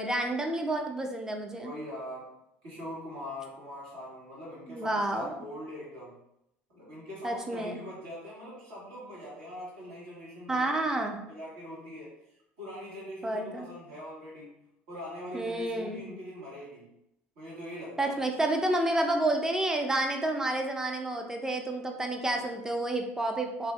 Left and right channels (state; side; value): normal; both; correlation 0.71